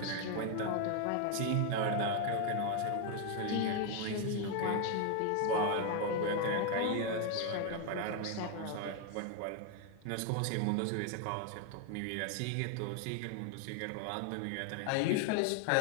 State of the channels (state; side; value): different; both; correlation 0.01